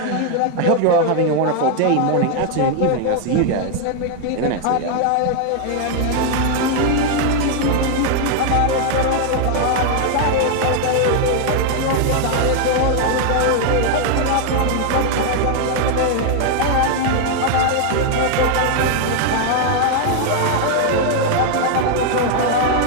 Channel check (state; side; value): different; both; correlation 0.00